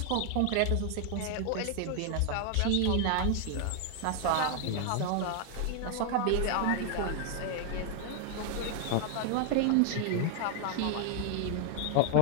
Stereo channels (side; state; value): both; different; correlation 0.00